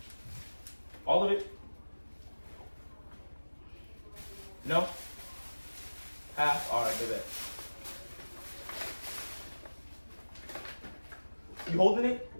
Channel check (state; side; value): inverted; both; correlation -1.00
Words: All of it? No? Half? Alright, do that. You holding it?